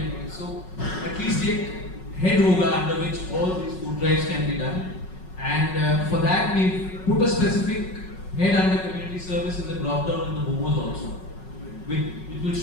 of thing. So at least take head hoga under which all these food drives can be done. And for that we put a specific head under community service in the drop down in the momos also. It will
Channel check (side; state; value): right; late; 5.4 ms